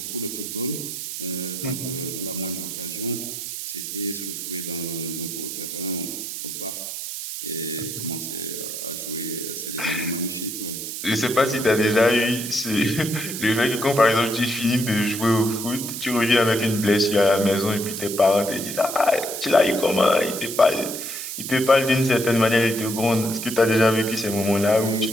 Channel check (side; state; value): right; noise; hiss, 6 dB below the sound